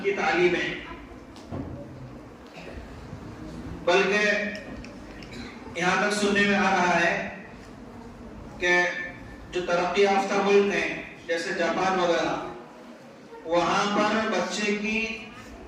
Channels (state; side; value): identical; both; correlation 1.00